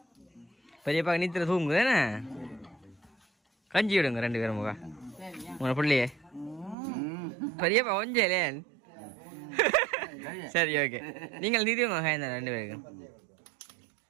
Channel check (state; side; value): drops out; left; at 6.8 s